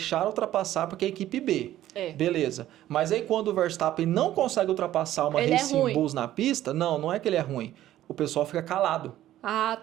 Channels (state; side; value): quieter; left; 13.4 dB